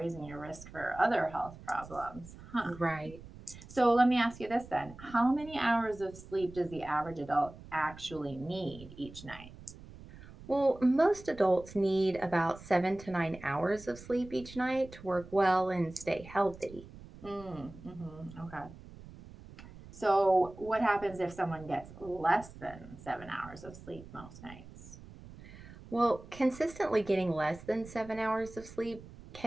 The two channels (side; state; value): right; noise; rumble, 17 dB below the sound